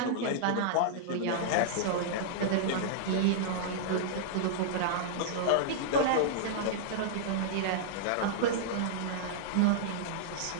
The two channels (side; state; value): both; different; correlation -0.02